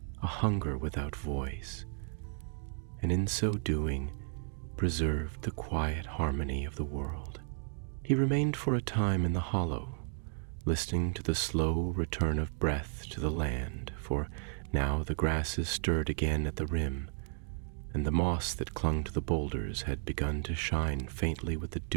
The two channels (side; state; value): left; silent; 55 dB below the other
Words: a hunger without voice, and in so doing preserved the quiet harmony of the world. He remained for a time in the hollow, listening to the slow return of breath to the land, for now the grasses stirred again at the rim, and the moss that clung to the boulders had begun to shine faintly with the